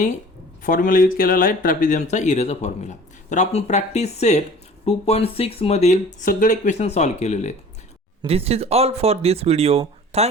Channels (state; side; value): normal; both; correlation 0.45